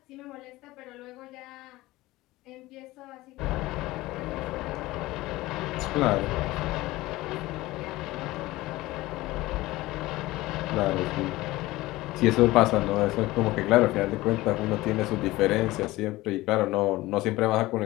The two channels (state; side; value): quieter; right; 18.7 dB